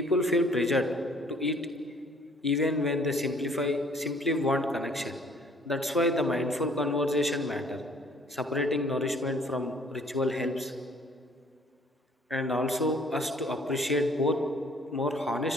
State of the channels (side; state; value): both; normal; correlation 0.58